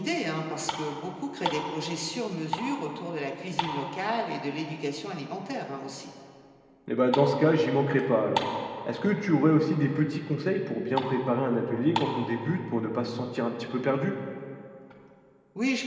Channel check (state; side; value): identical; both; correlation 1.00